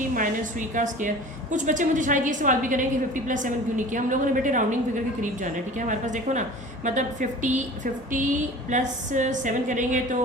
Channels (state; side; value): normal; both; correlation 0.41